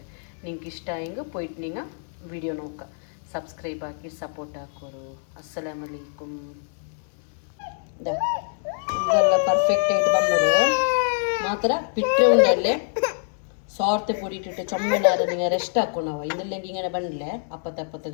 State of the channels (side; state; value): right; silent; digital silence